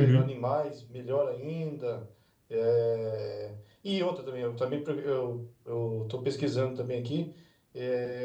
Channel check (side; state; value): both; identical; correlation 1.00